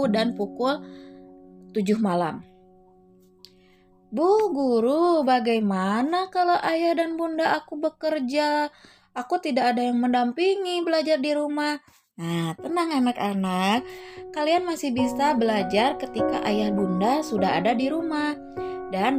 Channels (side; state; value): both; identical; correlation 1.00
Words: dan pukul 7 malam. Bu guru, bagaimana kalau ayah dan bunda aku bekerja? Aku tidak ada yang mendampingi belajar di rumah. Nah, tenang anak-anak, kalian masih bisa belajar ketika ayah bunda sudah ada di rumah dan